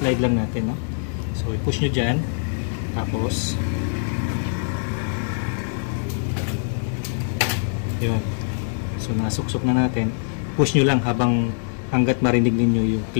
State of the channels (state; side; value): silent; right; digital silence